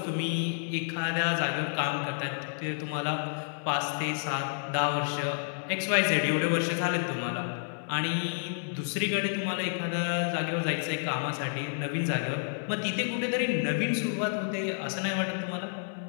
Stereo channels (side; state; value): right; silent; 58 dB below the other